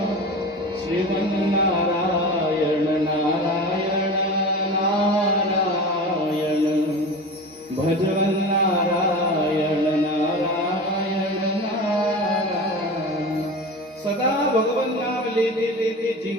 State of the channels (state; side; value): normal; both; correlation 0.31